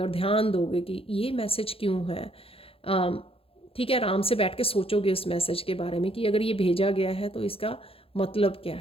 ध्यान दोगे कि ये मैसेज क्यों है, ठीक है, आराम से बैठ के सोचोगे उस मैसेज के बारे में कि अगर ये भेजा गया है तो इसका मतलब क्या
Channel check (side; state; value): right; late; 0.27 ms